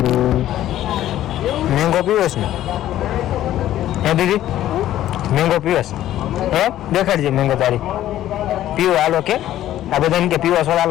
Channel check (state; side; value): quieter; right; 13.0 dB